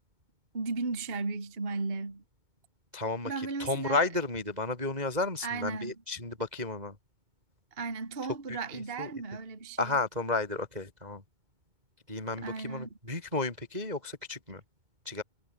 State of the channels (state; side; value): late; left; 2.0 ms